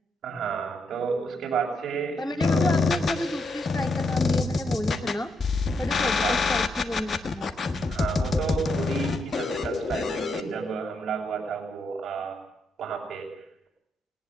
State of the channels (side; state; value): both; normal; correlation 0.79